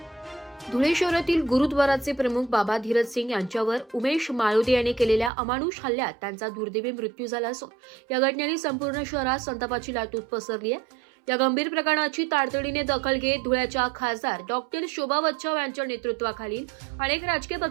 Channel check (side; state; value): left; drops out; at 5.3 s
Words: धुळे शहरातील गुरुद्वाराचे प्रमुख बाबा धीरज सिंग यांच्यावर उमेश माळोदे यांनी केलेल्या अमानुष हल्ल्यात त्यांचा दुर्दैवी मृत्यू झाला असून या घटनेने संपूर्ण शहरात संतापाची लाट पसरली आहे। या गंभीर प्रकरणाची तातडीने दखल घेत धुळ्याच्या खासदार डॉक्टर शोभा बच्छाव यांच्या नेतृत्वाखालील अनेक राजकीय